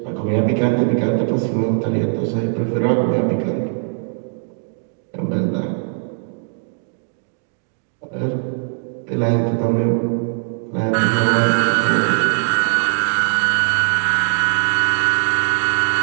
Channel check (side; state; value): left; silent; digital silence